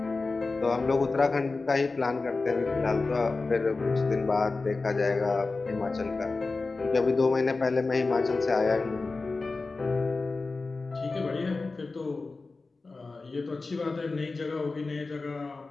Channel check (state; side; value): quieter; right; 3.8 dB